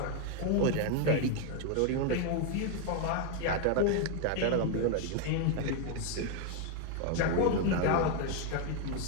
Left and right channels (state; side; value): different; both; correlation 0.01